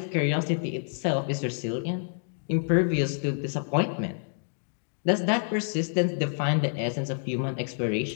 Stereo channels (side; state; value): right; silent; digital silence